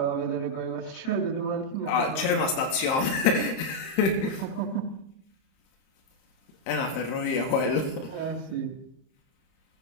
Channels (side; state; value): right; late; 30 ms